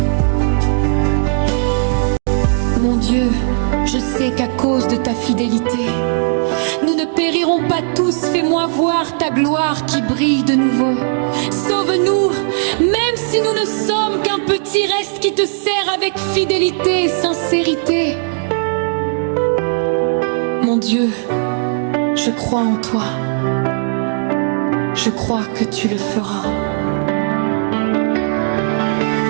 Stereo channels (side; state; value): left; silent; digital silence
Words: Mon Dieu, je sais qu'à cause de ta fidélité, nous ne périrons pas tous. Fais-moi voir ta gloire qui brille de nouveau. Sauve-nous, même si nous ne sommes qu'un petit reste qui te sert avec fidélité et sincérité. Mon Dieu, je crois en toi. Je crois que tu le feras.